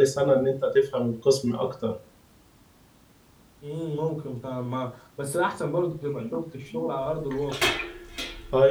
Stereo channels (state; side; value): identical; both; correlation 1.00